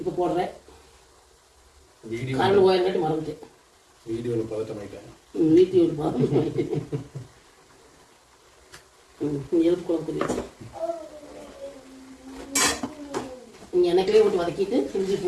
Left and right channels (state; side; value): identical; both; correlation 1.00